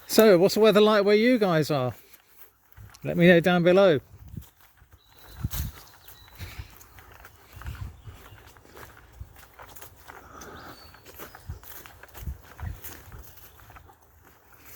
So, what's the weather like where you guys are? Let me know down below.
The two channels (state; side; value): identical; both; correlation 1.00